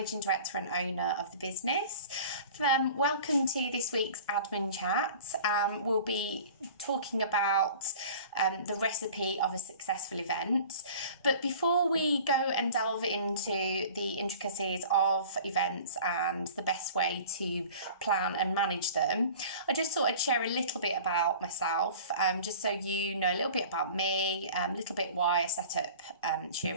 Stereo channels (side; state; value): both; inverted; correlation -0.43